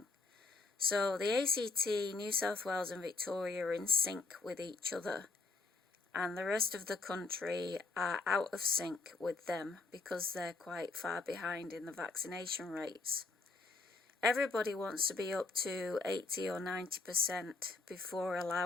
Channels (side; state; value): right; quieter; 3.8 dB